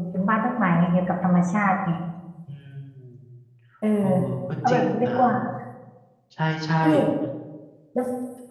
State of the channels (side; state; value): both; identical; correlation 1.00